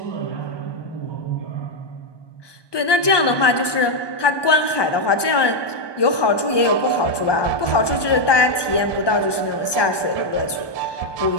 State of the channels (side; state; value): right; late; 1.2 ms